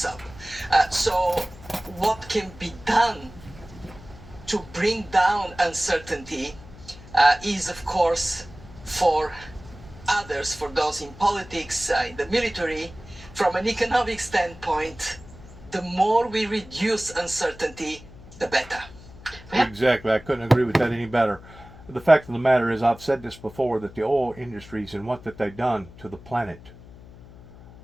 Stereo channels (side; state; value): left; noise; hum, 19 dB below the sound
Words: up. So what can be done to bring down uncertainty is, of course, for others, for those in politics, in the military, from an economic standpoint, the more we reduce uncertainty, the better. Exactly. I couldn't agree with that any better. The fact of the matter is, I've said this before, that the oil industries and what that they've done to the planet,